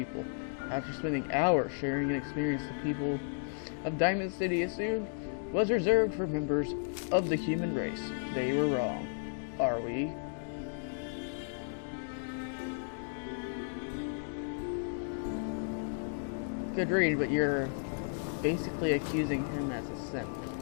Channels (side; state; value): right; silent; digital silence